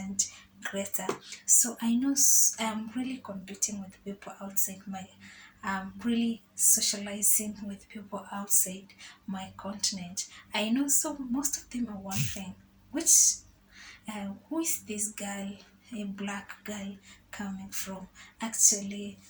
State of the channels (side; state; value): both; identical; correlation 1.00